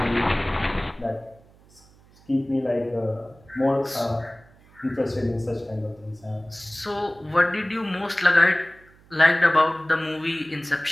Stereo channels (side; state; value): right; noise; hum, 28 dB below the sound